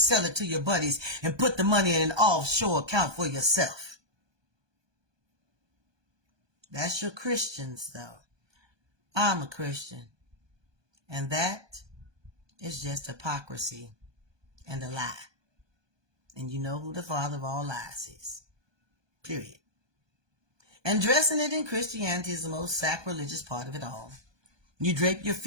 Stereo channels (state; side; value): late; left; 1.2 ms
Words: it to your buddies and put the money in an offshore account for yourself. That's your Christians, though. I'm a Christian. And that is just hypocrisy and a lie. And you know who the father of all lies is. Period. And dressing it in Christianity is the most sacrilegious part of it all. You drape your